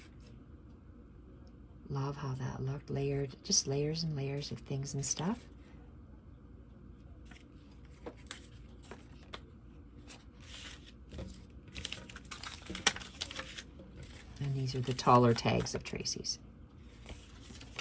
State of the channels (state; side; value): identical; both; correlation 1.00